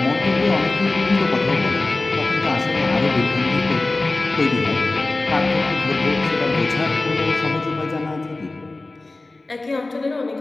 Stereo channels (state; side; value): quieter; right; 3.1 dB